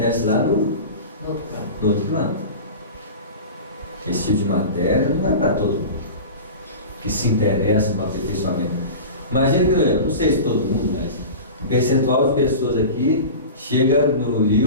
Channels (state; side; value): inverted; both; correlation -0.32